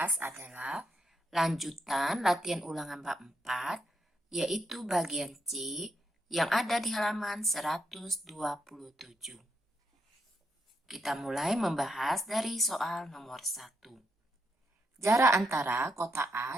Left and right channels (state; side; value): normal; both; correlation 0.79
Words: adalah lanjutan latihan ulangan bab 4, yaitu bagian C yang ada di halaman 127. Kita mulai membahas dari soal nomor 1. Jarak antara kota